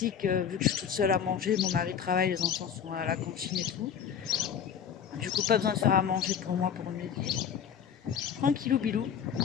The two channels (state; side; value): quieter; right; 8.0 dB